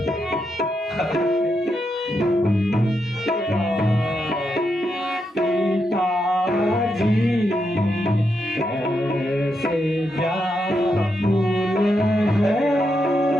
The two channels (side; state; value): both; normal; correlation 0.83